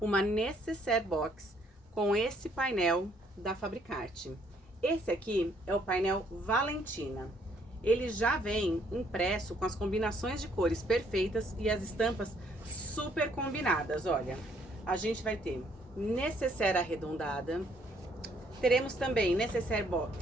necessaire box com esse painel da Fabricarte. Esse aqui é o painel Valentina. Ele já vem impresso com as combinações de cores perfeitas e as estampas super combinadas. Olha, a gente vai ter necessaire arredondada, teremos também necessaire box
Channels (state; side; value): normal; both; correlation 0.67